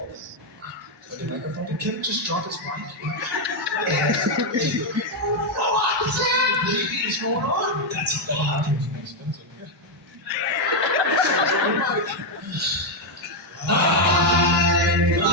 The microphone. Did Kevin just drop his mic? What is going on? That's bad.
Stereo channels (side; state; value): both; normal; correlation 0.03